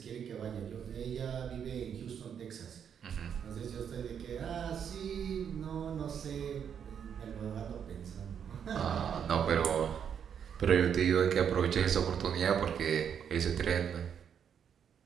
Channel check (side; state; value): left; quieter; 8.0 dB